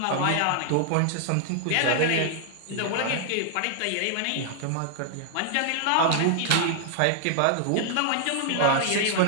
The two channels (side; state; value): both; different; correlation 0.00